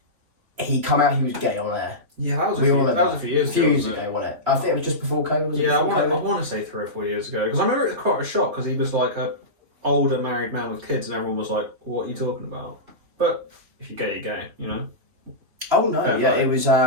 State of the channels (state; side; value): late; left; 3.2 ms